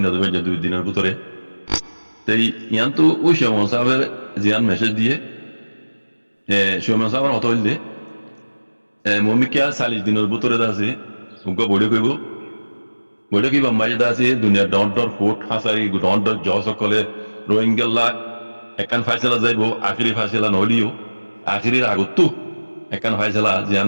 দেবে যে 2 দিনের ভিতরে তাই ইয়ান্তু ওই সময় সাবে জিয়ান মেসেজ দিয়ে সময় সাবার অত হইলে মমিকা 40 দিনের ভিতরে আছে উনকো বড় কইব বলে কি বাম্মাই দাসে দুনিয়া ডন্টর ফুট হাসারি ডন্টর জস কলে রোহিঙ্গা একান ফাইসলা যাইব আখিরি ফাইসলা নলিও আখিরির আগতো একান ফাইসলা জিয়ান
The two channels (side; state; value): both; inverted; correlation -1.00